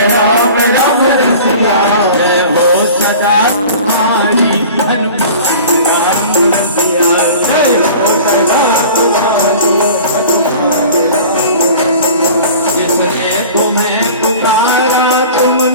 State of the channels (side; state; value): both; inverted; correlation -0.42